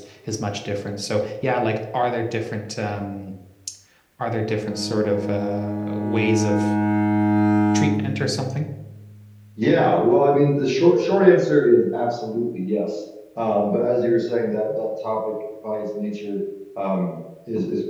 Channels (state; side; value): identical; both; correlation 1.00